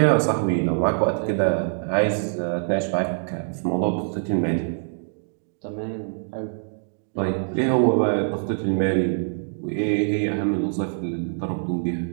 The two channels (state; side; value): silent; left; digital silence